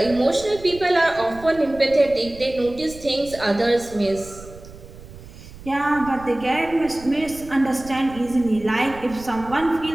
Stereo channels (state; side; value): noise; right; rumble, 17 dB below the sound